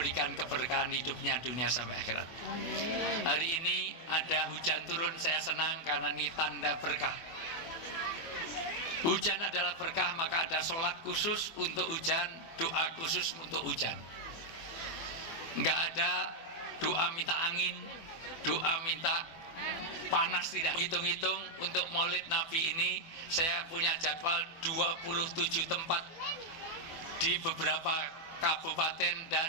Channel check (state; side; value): late; right; 24 ms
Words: keberkahan hidupnya dunia sampai akhirat. Hari ini ada hujan turun, saya senang karena ini tanda berkah. Hujan adalah berkah, maka ada sholat khusus untuk hujan, doa khusus untuk hujan. Enggak ada doa minta angin, doa minta panas, tidak. Hitung-hitung untuk Maulid Nabi ini saya punya jadwal 27 tempat di beberapa kabupaten